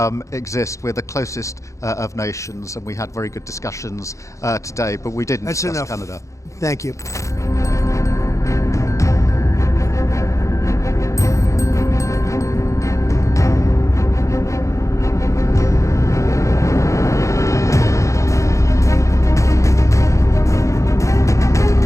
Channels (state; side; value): late; right; 0.15 ms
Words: exist. We're the closest of nations, and we had very good discussions today, but we didn't discuss Canada. Thank you.